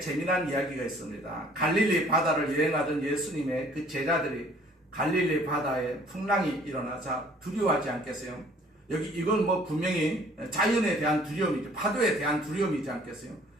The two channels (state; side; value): normal; both; correlation 0.55